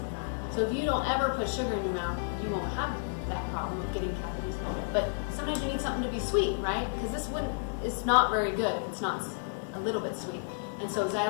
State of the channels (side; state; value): right; silent; digital silence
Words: So if you don't ever put sugar in your mouth, you won't have that problem of getting cavities. But sometimes you need something to be sweet, right? Because it's not very good if it's not a little bit sweet. And so